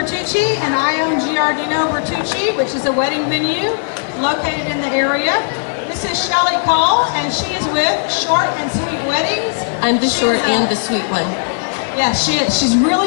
and I own Georgetown Bertucci, which is a wedding venue located in the area. This is Shelly Cole, and she is with Short and Sweet Weddings. I'm the short and the sweet one. Yeah, she is. She's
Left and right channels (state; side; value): silent; right; 57 dB below the other